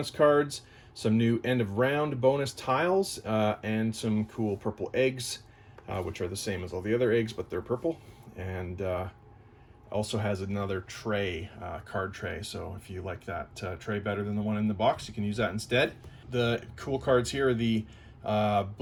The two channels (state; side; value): identical; both; correlation 1.00